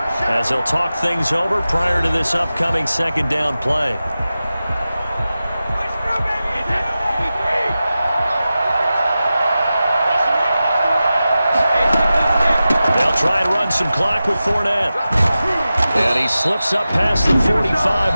as they'll talk things over prior to this upcoming 2nd down play. They'll try and run some clock with Fournette. And he slips up past the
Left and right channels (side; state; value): both; inverted; correlation -0.94